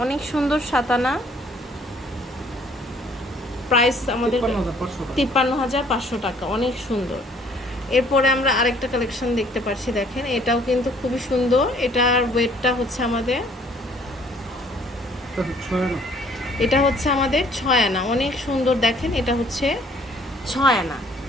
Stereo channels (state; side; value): normal; both; correlation 0.60